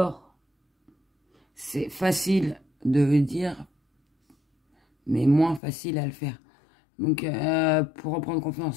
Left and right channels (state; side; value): drops out; right; at 5.6 s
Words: c'est facile de le dire, mais moins facile à le faire. Donc, pour reprendre